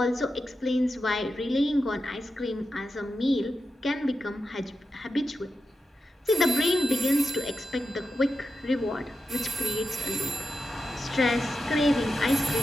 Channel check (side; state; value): both; normal; correlation 0.90